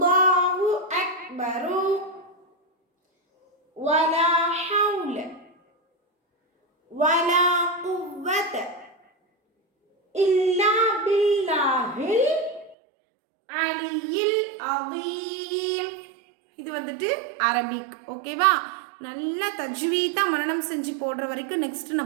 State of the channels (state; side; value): drops out; left; at 12.8 s